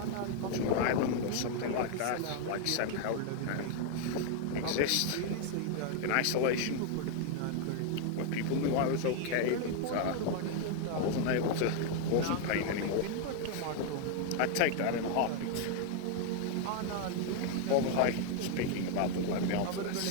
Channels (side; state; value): both; different; correlation 0.00